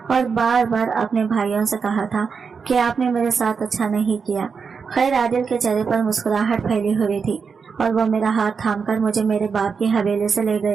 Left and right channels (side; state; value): left; quieter; 5.6 dB